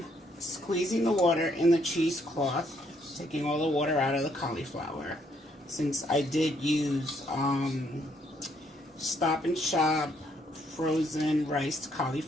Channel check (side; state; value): both; normal; correlation 0.70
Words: squeezing the water in the cheesecloth, taking all the water out of the cauliflower. Since I did use Stop and Shop frozen riced